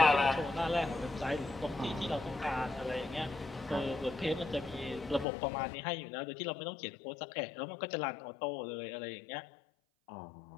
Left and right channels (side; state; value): right; drops out; at 5.2 s